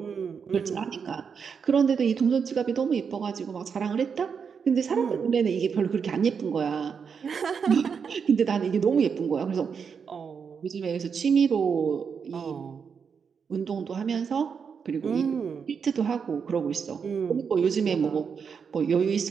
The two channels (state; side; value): quieter; left; 6.3 dB